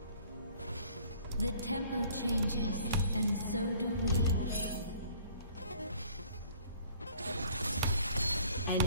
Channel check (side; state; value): both; inverted; correlation -0.55